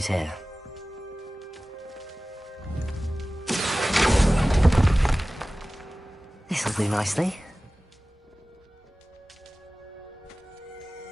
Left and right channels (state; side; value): normal; both; correlation 0.97